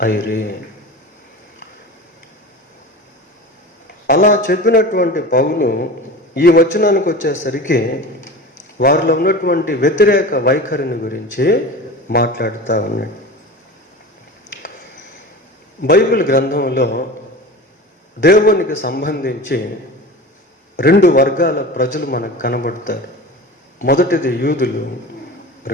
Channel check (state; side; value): normal; both; correlation 0.33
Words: అయిరి. అలా చెప్పినటువంటి పౌలు ఈ వచనానికి వచ్చేసరికి వారిలో ఉన్నటువంటి వ్యతిరేక వైఖరిని గురించి మాట్లాడుతూ ఉన్నాడు. బైబిల్ గ్రంథంలో దేవునికి సంబంధించి 2 వర్గాల ప్రజలు మనకు కనబడతారు. మొదటిది యూదులు,